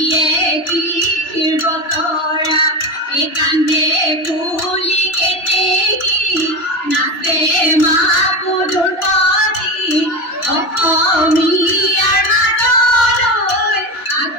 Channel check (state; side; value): late; right; 3.0 ms